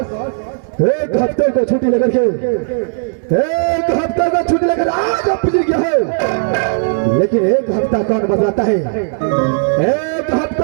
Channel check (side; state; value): left; silent; 69 dB below the other